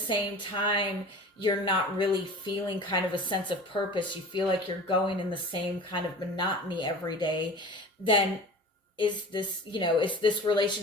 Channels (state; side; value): normal; both; correlation 0.39